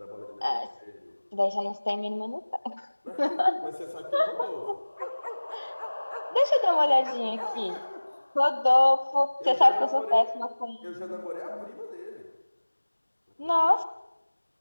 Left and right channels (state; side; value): inverted; both; correlation -1.00